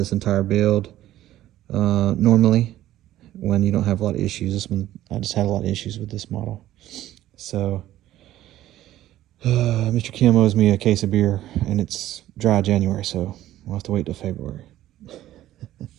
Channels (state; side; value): quieter; left; 13.9 dB